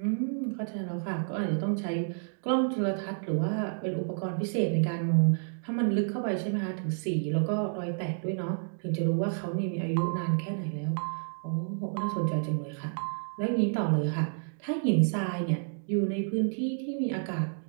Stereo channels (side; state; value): left; silent; digital silence